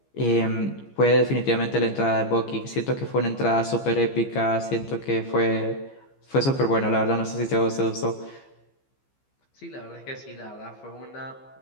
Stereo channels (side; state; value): right; late; 15 ms